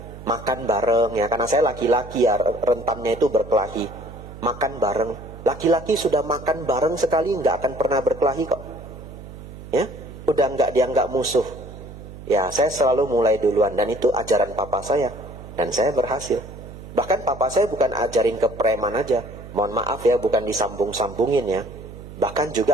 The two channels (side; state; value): right; noise; hum, 14 dB below the sound